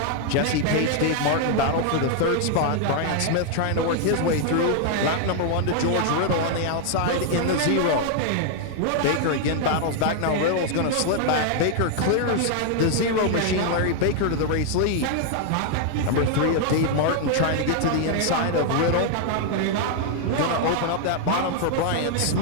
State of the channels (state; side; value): different; both; correlation 0.00